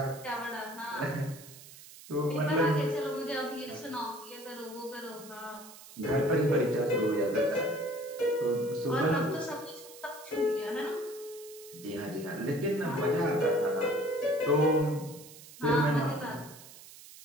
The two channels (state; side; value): noise; right; hiss, 18 dB below the sound